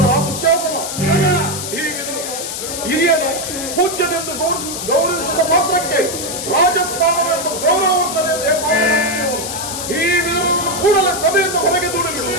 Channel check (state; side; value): noise; left; hiss, 6 dB below the sound